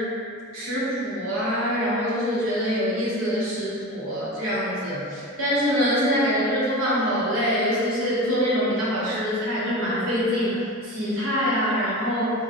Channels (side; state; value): both; normal; correlation 0.29